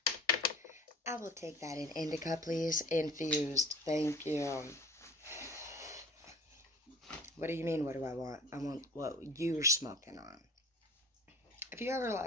I will take that in indica, please. Infused. Thank you. What do you mean, what do I want? I want what you're smoking on. If you ever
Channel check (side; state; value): both; normal; correlation 0.45